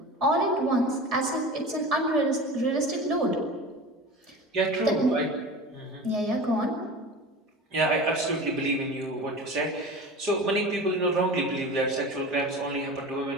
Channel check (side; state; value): both; normal; correlation 0.33